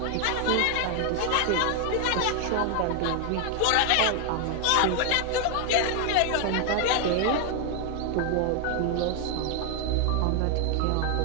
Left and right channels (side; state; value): both; different; correlation 0.00